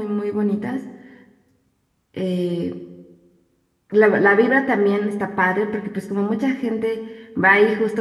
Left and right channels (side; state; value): both; identical; correlation 1.00